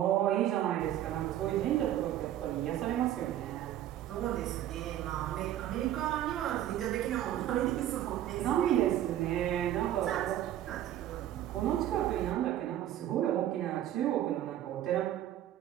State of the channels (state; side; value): quieter; left; 12.1 dB